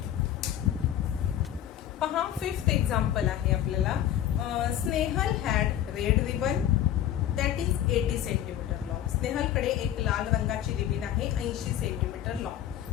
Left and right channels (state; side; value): quieter; right; 11.4 dB